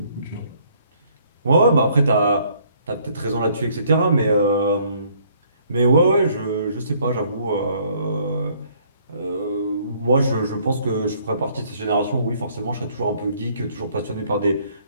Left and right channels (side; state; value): both; inverted; correlation -0.63